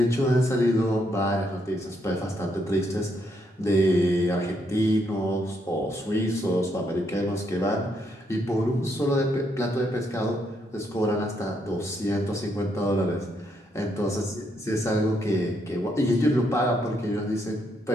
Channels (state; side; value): normal; both; correlation 0.76